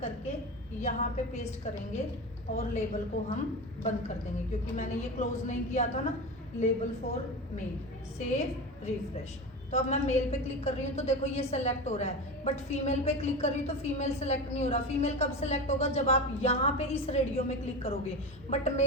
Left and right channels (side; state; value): both; normal; correlation 0.25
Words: करके यहाँ पे पेस्ट करेंगे, और लेबल को हम बंद कर देंगे, क्योंकि मैंने ये क्लोज नहीं किया था ना, label for male. Save, refresh. तो अब मैं मेल पे क्लिक कर रही हूँ तो देखो ये सेलेक्ट हो रहा है, बट फीमेल पे क्लिक कर रही हूँ तो फीमेल सेलेक्ट नहीं हो रहा। फीमेल कब सेलेक्ट होगा, जब आप यहाँ पे इस रेडियो में क्लिक करोगे, बट